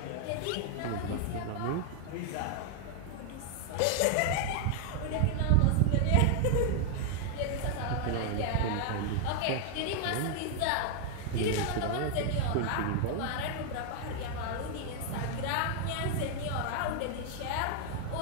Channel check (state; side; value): different; both; correlation 0.00